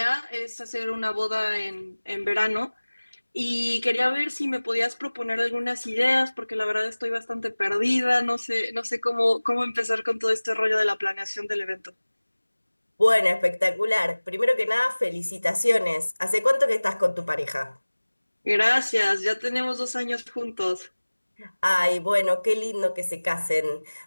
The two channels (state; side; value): inverted; both; correlation -1.00